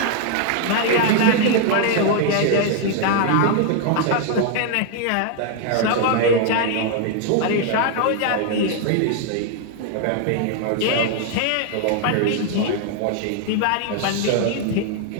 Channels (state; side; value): different; both; correlation 0.00